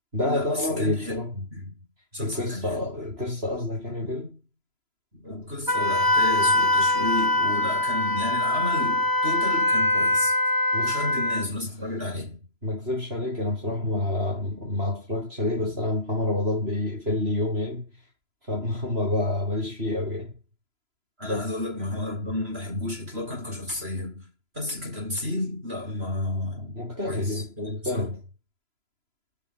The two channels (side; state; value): left; late; 3.0 ms